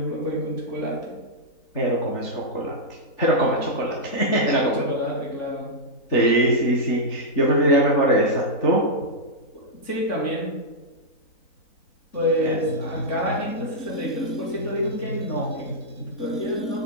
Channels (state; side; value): late; right; 3.9 ms